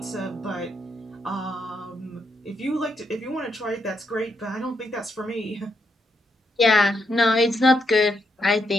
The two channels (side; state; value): both; normal; correlation 0.79